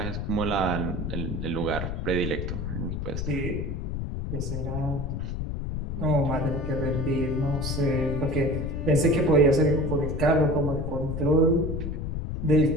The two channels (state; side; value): noise; left; rumble, 3 dB below the sound